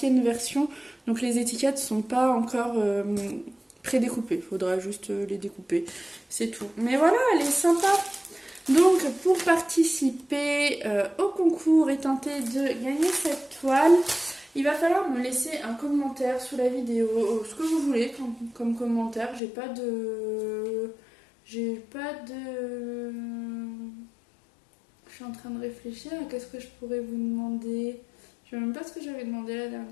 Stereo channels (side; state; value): right; drops out; at 19.4 s